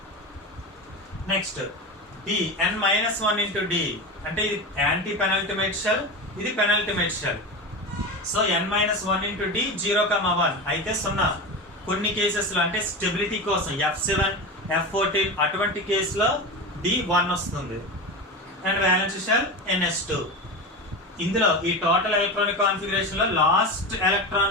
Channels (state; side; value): normal; both; correlation 0.24